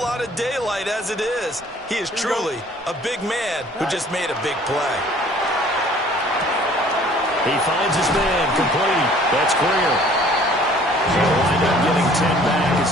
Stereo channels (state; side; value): normal; both; correlation 0.54